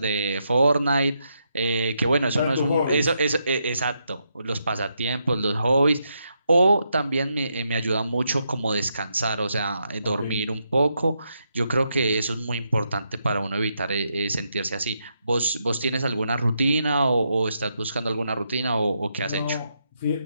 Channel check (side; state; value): both; inverted; correlation -0.81